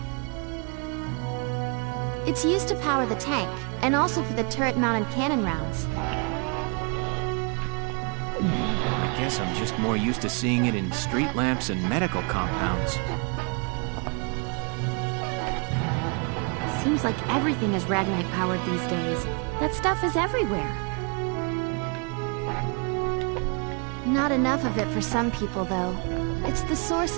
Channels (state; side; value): quieter; left; 35.2 dB